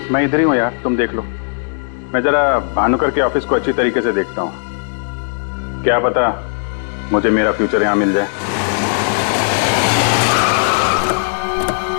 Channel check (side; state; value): right; silent; digital silence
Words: मैं इधर ही हूं यार, तुम देख लो। मैं जरा भानुकर के ऑफिस को अच्छी तरीके से देखता हूं, क्या पता मुझे मेरा फ्यूचर यहां मिल जाए।